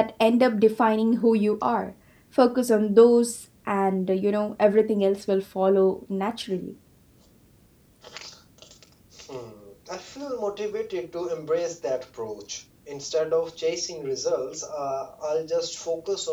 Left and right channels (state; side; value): identical; both; correlation 1.00